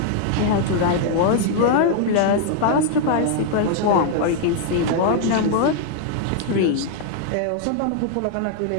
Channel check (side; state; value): both; different; correlation 0.00